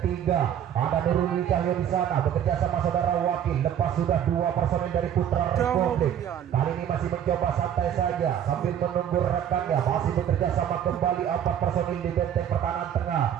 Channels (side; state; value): left; quieter; 9.6 dB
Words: ada Nurul Wijaya di sana bekerja sama saudara Wakil, lepas sudah dua personil dari Putra Republik. Kali ini masih mencoba santai saja sambil menunggu rekannya, masih bekerja sama kembali empat personil di benteng pertahanan tengah.